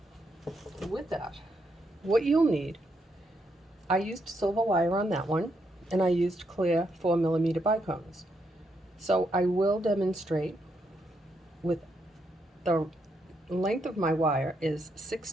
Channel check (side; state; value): both; normal; correlation 0.79